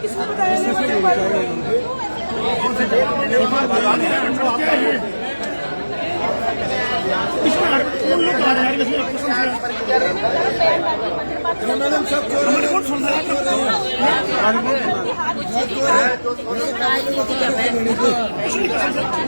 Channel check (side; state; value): both; inverted; correlation -1.00